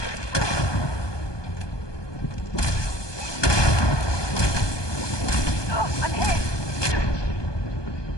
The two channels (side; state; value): right; late; 1.2 ms